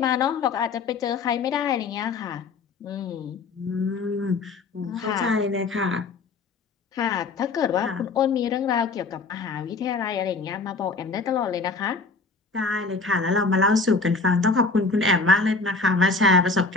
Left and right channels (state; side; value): quieter; right; 4.0 dB